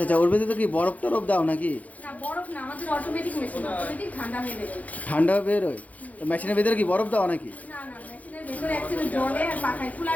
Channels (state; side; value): late; right; 0.074 ms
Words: আচ্ছা, ওর ভেতরে তো কি বরফ টরফ দাও নাকি? না, বরফ না, আমাদের অটোমেটিক মেশিন, অটোমেটিক ঠান্ডা হয়ে বেরোয়। ঠান্ডা বেরোয়? তো মেশিনের ভেতরে কি বরফ দাও নাকি? না না, মেশিনের ভেতরে অ্যাকচুয়ালি জলে আর পাখায়